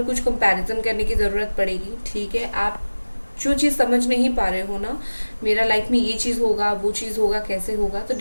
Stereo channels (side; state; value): both; inverted; correlation -1.00